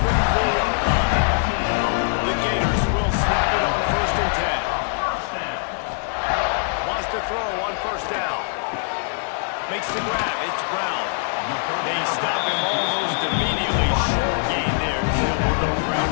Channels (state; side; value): silent; right; digital silence